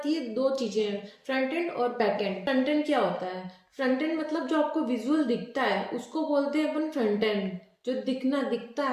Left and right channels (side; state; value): both; identical; correlation 1.00